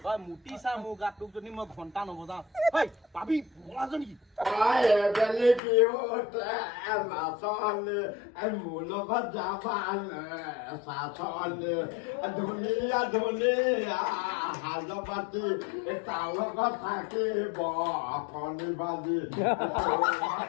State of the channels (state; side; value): drops out; right; at 5.6 s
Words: চা মোৰ গাত তোক যদি মই ঘণ্টা নবজাওঁ পাবি বলাজ নেকি মোৰ লগত যাবা ধুনীয়া ধুনীয়া সাজ পাতি তাৰ লগত থাকিব কণী ভাজি